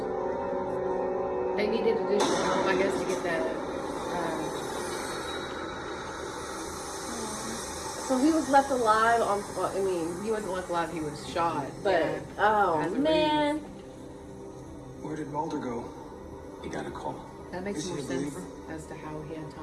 They needed additional help, I guess, to get that. So he was left alive on, well, I mean, He wasn't left alive, he was shot. but, Yeah. oh As a man. Where did Mulder go? You got a call. That makes Is he more a sense believer? as to how he had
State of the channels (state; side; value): identical; both; correlation 1.00